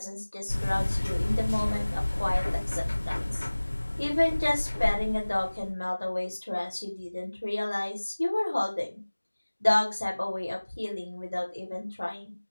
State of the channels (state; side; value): inverted; both; correlation -1.00